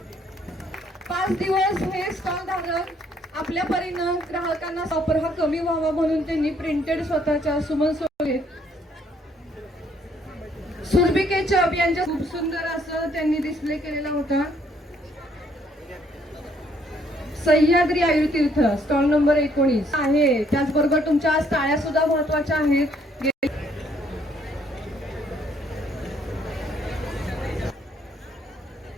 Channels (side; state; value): both; normal; correlation 0.67